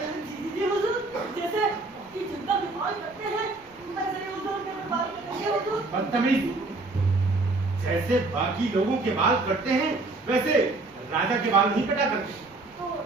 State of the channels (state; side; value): quieter; left; 3.2 dB